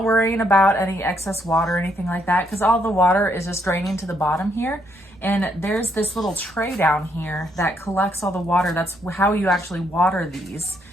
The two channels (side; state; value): both; normal; correlation 0.73